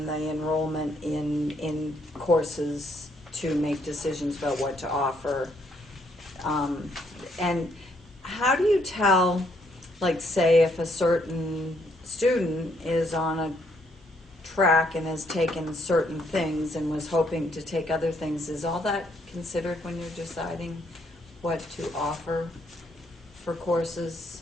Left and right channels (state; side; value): normal; both; correlation 0.71